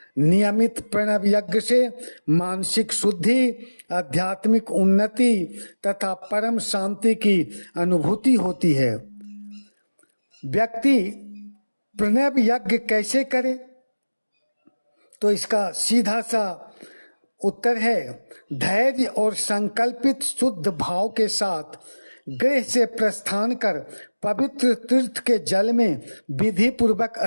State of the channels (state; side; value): inverted; both; correlation -1.00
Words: नियमित प्रणव यज्ञ से मानसिक शुद्धि, आध्यात्मिक उन्नति तथा परम शांति की अनुभूति होती है। व्यक्ति प्रणव यज्ञ कैसे करे, तो इसका सीधा सा उत्तर है धैर्य और संकल्पित शुद्ध भाव के साथ गृह से प्रस्थान कर पवित्र तीर्थ के जल में विधि पूर्वक